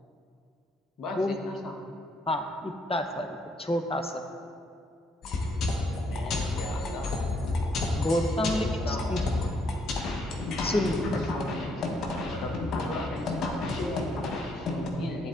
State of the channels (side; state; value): both; normal; correlation 0.72